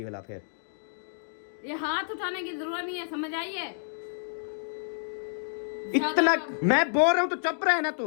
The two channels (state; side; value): silent; right; digital silence